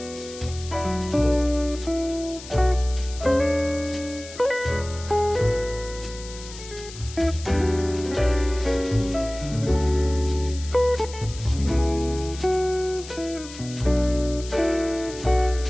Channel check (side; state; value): left; noise; hiss, 15 dB below the sound